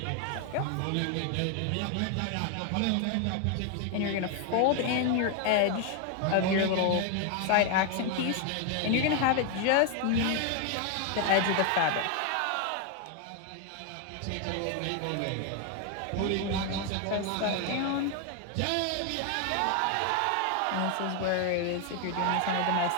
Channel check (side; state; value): both; different; correlation 0.01